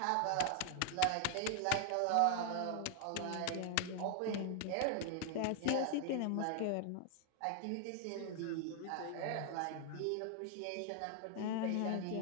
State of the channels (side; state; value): both; different; correlation 0.00